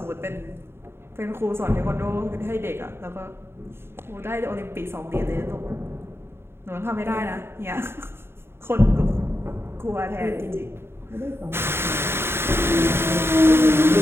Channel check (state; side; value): late; left; 0.11 ms